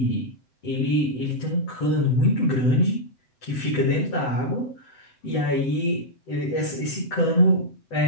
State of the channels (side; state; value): right; late; 7.9 ms